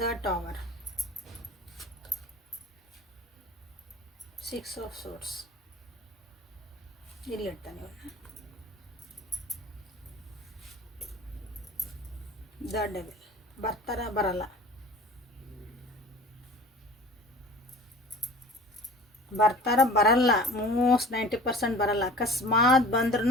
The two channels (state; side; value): normal; both; correlation 0.42